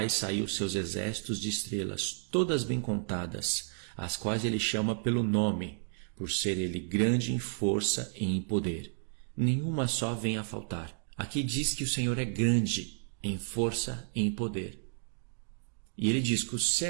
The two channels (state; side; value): silent; left; digital silence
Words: sair os seus exércitos de estrelas, todas bem contadas, as quais ele chama pelo nome, por ser ele grande em força e em poder. Nenhuma só vem a faltar. Aqui diz que o Senhor é grande em força e em poder. E ele diz que o